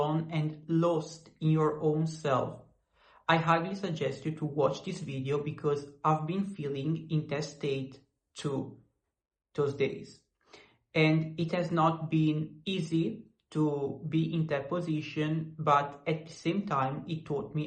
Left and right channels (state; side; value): identical; both; correlation 1.00